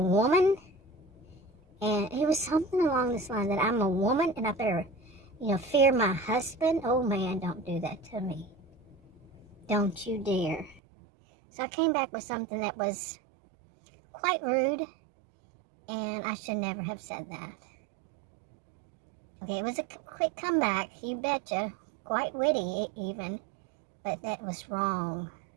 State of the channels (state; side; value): drops out; left; at 10.8 s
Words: woman. And it was something along this line, that I'm a woman and I better, fear my husband. Oh man, don't do that to me. Don't you dare. So I came back with something that was quite rude, and I should never have said that. Okay, it was a quick comeback, you betcha. Quite witty even, but that was wrong.